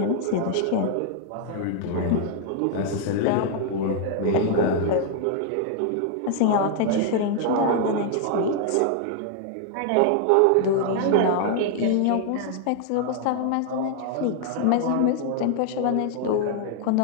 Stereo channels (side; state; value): both; different; correlation 0.00